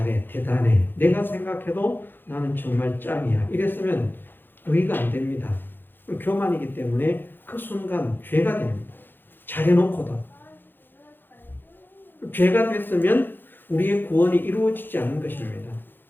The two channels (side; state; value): right; late; 0.097 ms